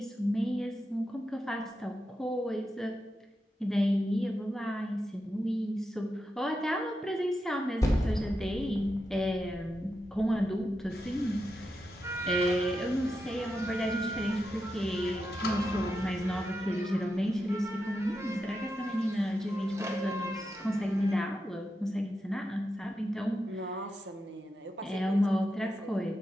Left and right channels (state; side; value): normal; both; correlation 0.87